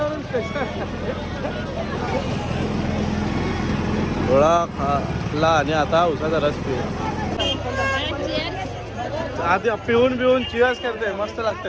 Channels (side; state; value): both; identical; correlation 1.00